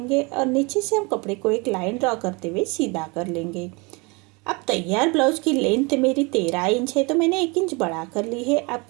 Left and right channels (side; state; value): left; quieter; 28.1 dB